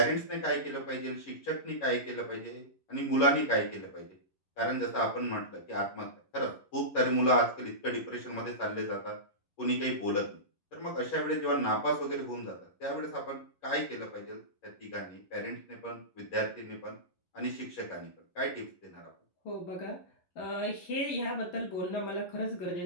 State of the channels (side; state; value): right; late; 11 ms